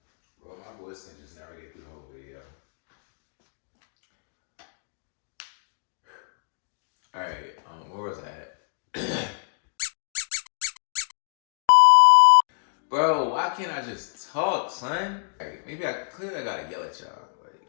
Bro, my voice can just never get through the whole video. Alright, where was I at? Bro, why can't I just talk, son? Like, maybe I gotta yell at y'all. Like,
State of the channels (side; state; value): right; silent; digital silence